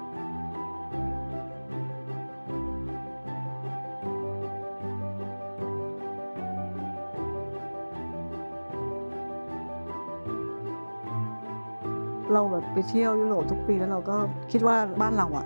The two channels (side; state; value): both; inverted; correlation -1.00